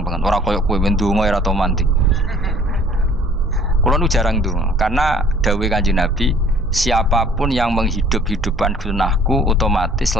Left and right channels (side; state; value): both; normal; correlation 0.54